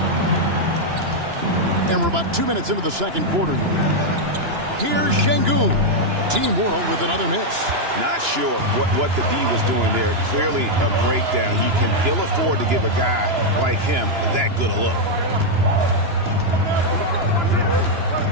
And we're about 2 minutes into the second quarter here. Here's Şengün. Team World with another miss. Not sure what the D was doing there. Clearly a breakdown. You can ill afford to give a guy like him that good a look.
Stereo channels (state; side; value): late; left; 2.9 ms